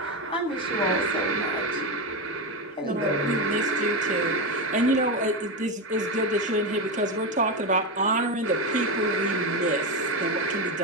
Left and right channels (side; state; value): both; normal; correlation 0.13